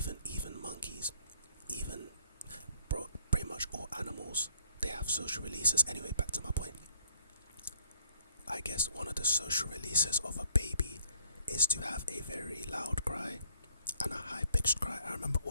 monkeys, even pretty much all animals, they have social releases. Anyway, back to my point. I guess one of the social releases of a baby is to have a very loud cry and a high-pitched cry. I remember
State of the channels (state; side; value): inverted; both; correlation -0.62